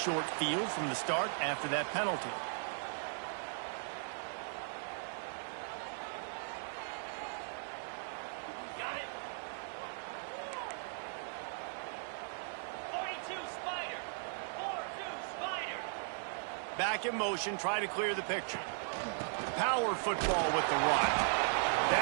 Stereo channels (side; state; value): left; silent; 53 dB below the other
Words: field from the start after that penalty. Got it. 42 Spider. 4-2 Spider. Back in motion, try to clear the picture. Power football with the run.